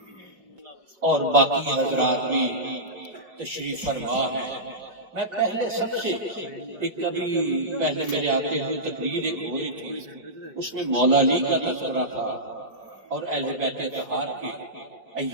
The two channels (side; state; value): left; late; 5.1 ms